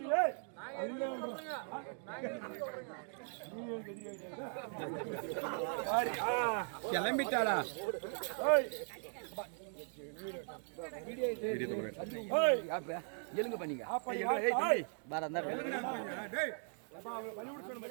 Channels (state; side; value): silent; left; 52 dB below the other